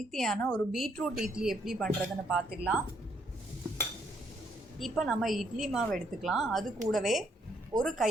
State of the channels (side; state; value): both; normal; correlation 0.71